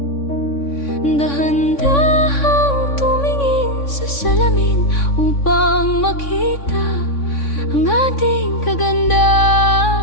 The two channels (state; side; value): late; right; 3.6 ms